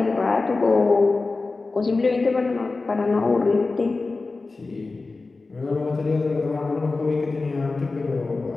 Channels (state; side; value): quieter; right; 3.7 dB